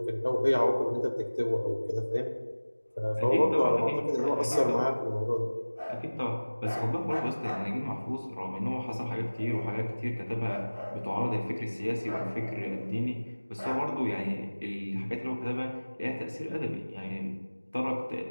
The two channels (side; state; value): both; inverted; correlation -1.00